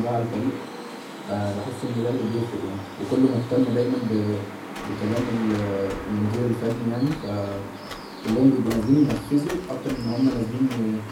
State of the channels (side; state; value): both; identical; correlation 1.00